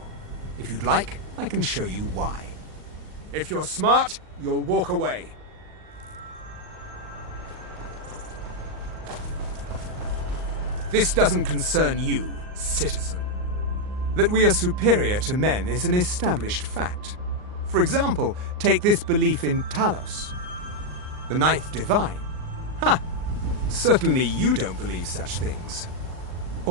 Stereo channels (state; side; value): late; left; 39 ms